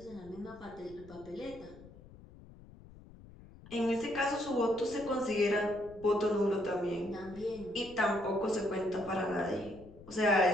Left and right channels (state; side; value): noise; left; rumble, 20 dB below the sound